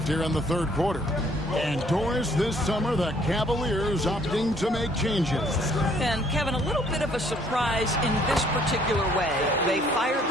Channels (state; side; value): normal; both; correlation 0.62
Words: here in the third quarter. And Doris, this summer, the Cavaliers opting to make changes. And Kevin, a little bit of a surprise in this particular way. They fired